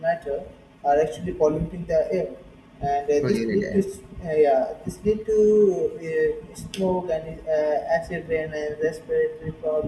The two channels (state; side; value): identical; both; correlation 1.00